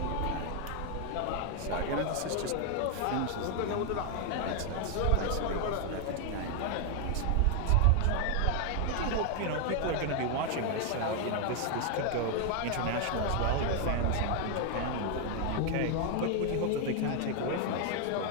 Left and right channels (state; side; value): different; both; correlation 0.00